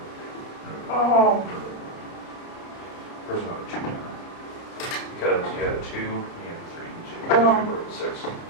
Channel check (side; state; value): right; late; 30 ms